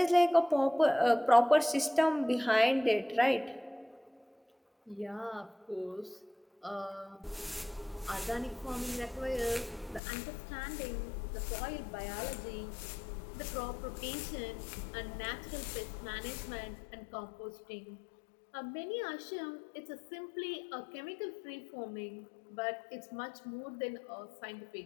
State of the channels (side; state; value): right; drops out; at 10.0 s